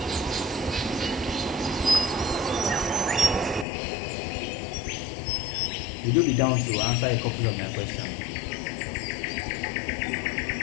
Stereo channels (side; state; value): right; drops out; at 3.7 s